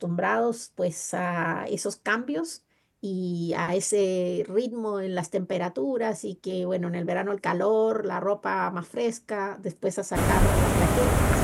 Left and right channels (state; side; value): identical; both; correlation 1.00